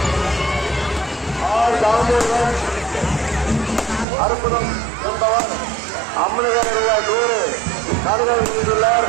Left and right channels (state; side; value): drops out; left; at 4.0 s